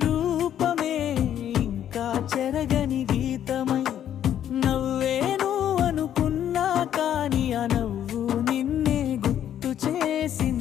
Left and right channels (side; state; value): right; quieter; 10.4 dB